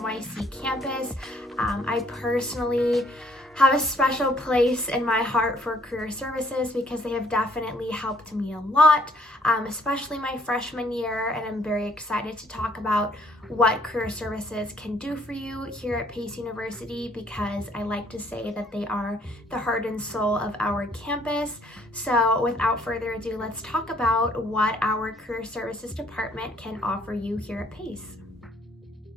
campus. I personally have a special place in my heart for career services because they have definitely helped me a lot, especially my freshman year, and I'm very excited to talk about what career services can do for you here at Pace University because I like to say that they are the heart and soul of our campus. So without further ado, let's talk about what our career services department can offer you here at Pace.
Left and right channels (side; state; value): both; normal; correlation 0.63